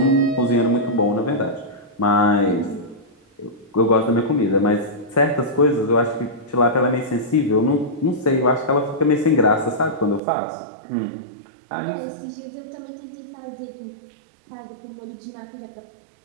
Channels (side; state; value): left; drops out; at 10.2 s